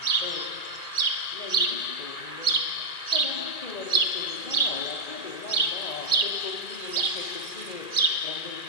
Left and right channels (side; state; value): right; late; 2.4 ms